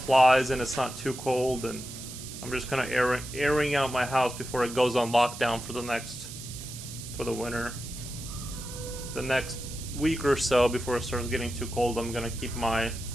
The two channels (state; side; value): noise; right; hiss, 12 dB below the sound